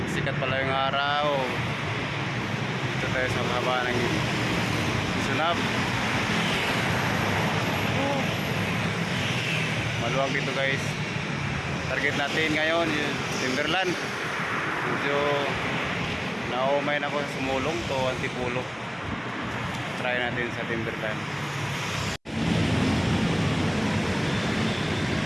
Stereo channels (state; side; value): identical; both; correlation 1.00